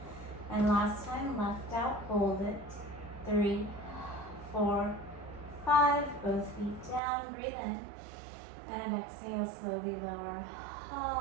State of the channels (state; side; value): drops out; left; at 7.0 s